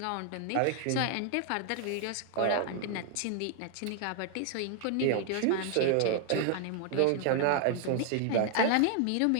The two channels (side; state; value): both; different; correlation 0.00